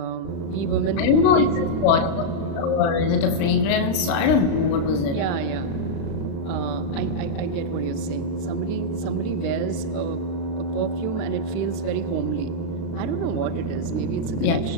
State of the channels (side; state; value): right; late; 36 ms